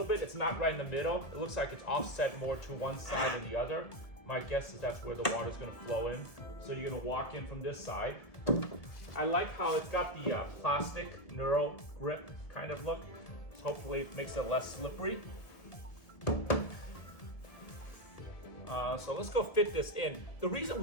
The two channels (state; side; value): late; right; 1.7 ms